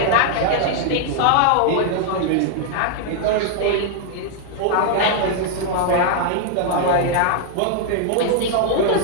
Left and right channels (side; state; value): both; different; correlation -0.01